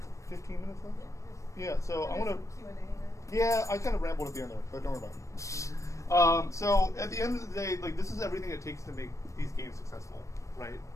15 minutes left? Yeah, so I want to... Yeah, I kind of rambled at the end there, but don't worry about it. So at the end of the day, like, this is everything it takes to make these games successful, right?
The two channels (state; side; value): late; right; 0.15 ms